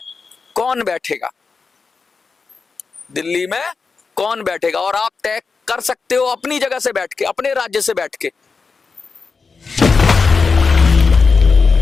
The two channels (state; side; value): quieter; right; 4.8 dB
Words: कौन बैठेगा, दिल्ली में कौन बैठेगा। और आप तय कर सकते हो अपनी जगह से बैठ के, अपने राज्य से बैठ के।